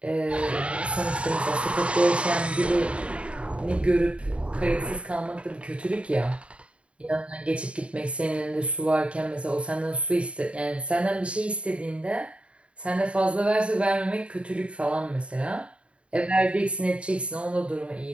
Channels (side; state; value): left; late; 0.059 ms